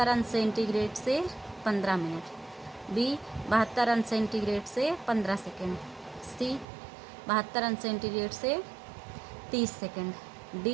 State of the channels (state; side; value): drops out; left; at 6.7 s